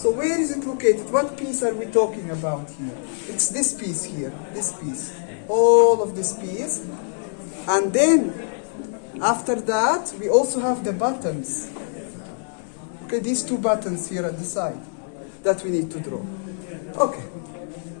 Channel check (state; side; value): silent; right; digital silence